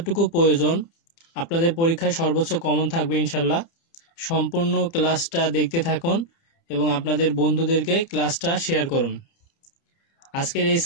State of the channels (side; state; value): right; late; 30 ms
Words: প্রয়োজন আপনাদের পরীক্ষায় সর্বোচ্চ কমন থাকবে ইনশাল্লাহ। সম্পূর্ণ ক্লাসটা দেখতে থাকুন এবং আপনাদের বন্ধুদেরকে ক্লাসটা শেয়ার করুন। আজকের এই